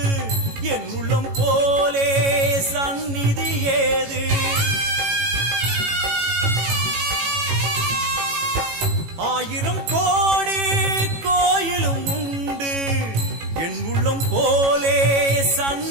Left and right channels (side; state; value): left; late; 18 ms